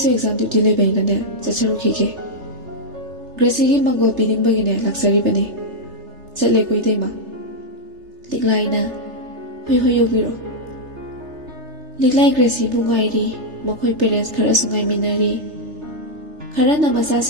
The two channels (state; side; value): late; left; 3.3 ms